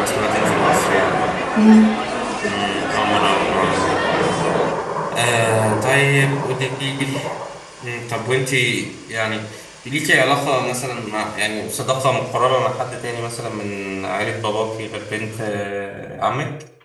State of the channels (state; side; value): identical; both; correlation 1.00